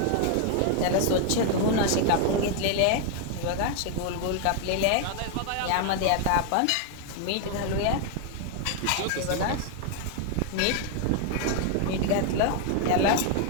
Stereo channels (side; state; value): both; different; correlation 0.00